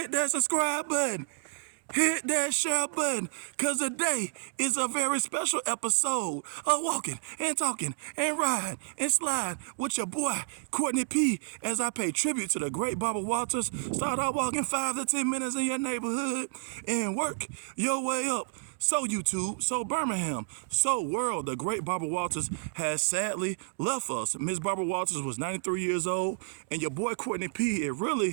that subscribe button, hit that share button, because today is a very special episode of Walking and Talking and Riding and Slide with your boy, Courtney P, as I pay tribute to the great Barbara Walters. Start out walking 5 to 10 minutes in your neighborhood and work your way up. So YouTube, so Birmingham, so world, the great Barbara Walters has sadly left us. Miss Barbara Walters was 93 years old, and your boy Courtney P, it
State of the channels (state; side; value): silent; left; digital silence